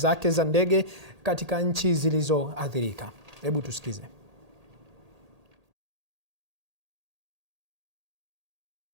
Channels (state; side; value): late; left; 1.8 ms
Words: za ndege katika nchi zilizoathirika. Hebu tusikize.